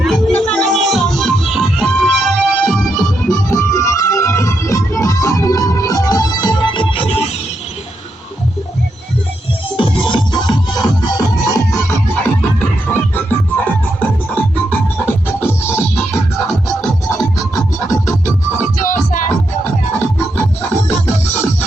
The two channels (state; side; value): normal; both; correlation 0.82